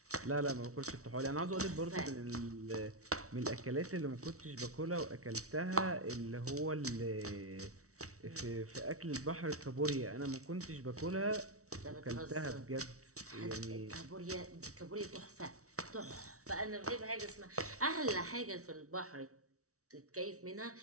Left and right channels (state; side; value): late; left; 0.64 ms